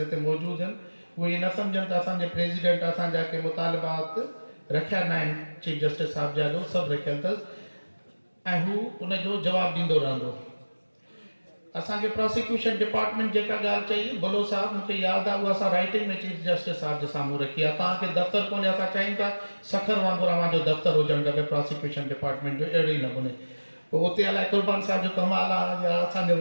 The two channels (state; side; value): inverted; both; correlation -1.00